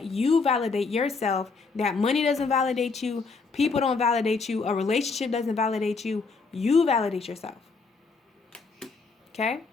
you validate yourself, that money doesn't validate you, people don't validate you, a relationship doesn't validate you, you validate yourself. Okay?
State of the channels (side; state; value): right; quieter; 4.4 dB